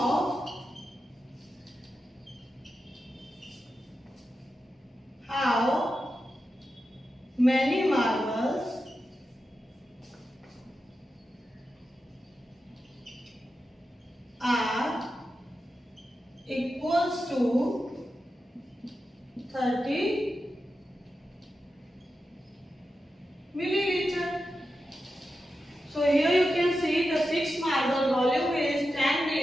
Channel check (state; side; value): normal; both; correlation 0.90